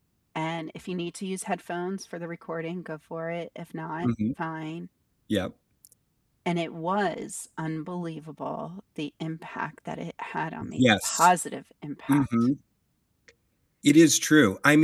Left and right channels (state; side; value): identical; both; correlation 1.00